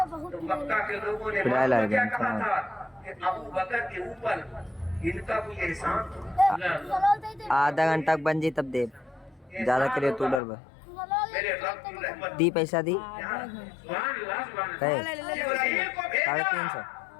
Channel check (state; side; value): drops out; right; at 10.4 s